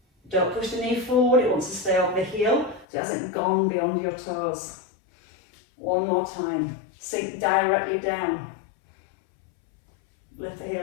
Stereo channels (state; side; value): drops out; right; at 2.9 s